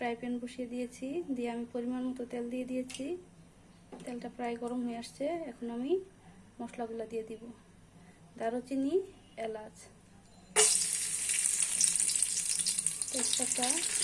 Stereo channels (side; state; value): both; identical; correlation 1.00